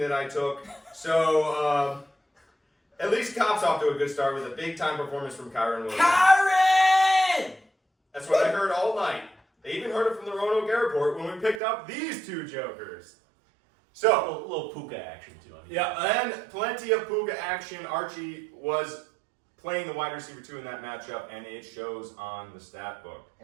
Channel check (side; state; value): left; drops out; at 11.6 s